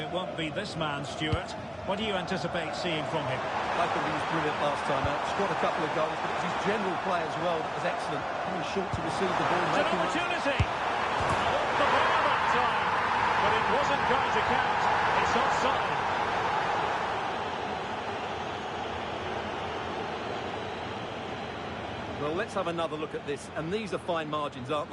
won't be this man, Stuart. What do you anticipate seeing from him? I thought he was brilliant last time out. Scored a couple of goals, but it was his general play as well that was excellent. Coming short to receive the ball. It's an opportunity! Off the bar that time, but it wasn't going to count. It's offside. Well, let's have another look at this. And these are fine margins, aren't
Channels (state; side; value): identical; both; correlation 1.00